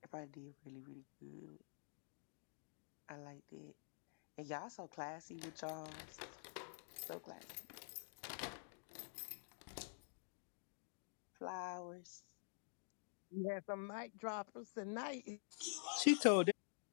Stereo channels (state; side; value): silent; right; digital silence